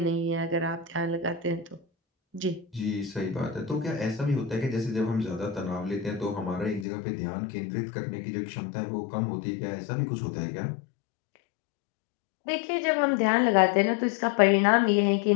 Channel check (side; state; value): right; drops out; at 6.9 s